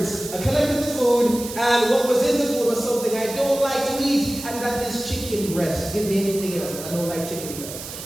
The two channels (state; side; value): noise; right; hiss, 11 dB below the sound